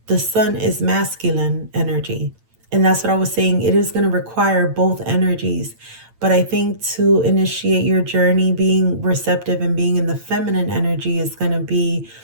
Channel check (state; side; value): late; left; 8.9 ms